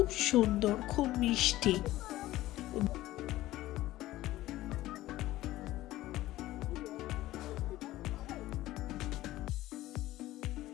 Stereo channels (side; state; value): right; quieter; 16.1 dB